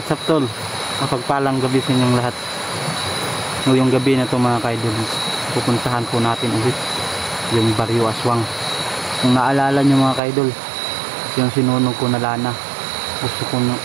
up tol? Mapagpalang gabi sa inyong lahat. Ngayong gabi na ito mga kaidol, pupuntahan po natin ulit yung Barrio Aswang. Kung naalala nyo mga kaidol, yung sinunog ko na lana, gusto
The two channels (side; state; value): left; drops out; at 10.2 s